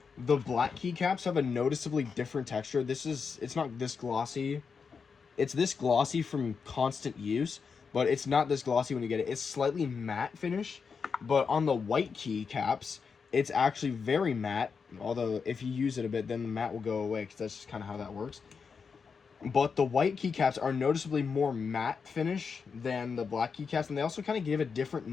the black keycaps have a noticeably different texture. It's not this glossy. It's this glossy from constant use, but it's not this glossy when you get it. It's slightly matte finish, but on the white keycaps, it's actually very matte. Although if you use it a bit, then the matte will go away, because that's just kind of how that works. But the white keycaps are noticeably more matte finish than the black keycaps, and they also kind of give a different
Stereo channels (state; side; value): quieter; right; 5.6 dB